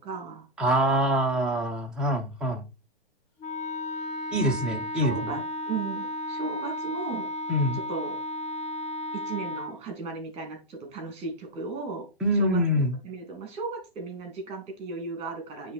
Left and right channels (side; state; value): both; normal; correlation 0.01